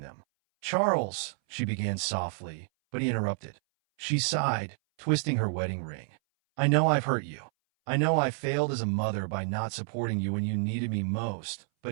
them. "Charles," she began softly, but he interrupted. She sighed, twisting her wedding ring. "I know I've hurt you. I know I failed as a mother by not supporting you when you needed me most,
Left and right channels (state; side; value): silent; left; 58 dB below the other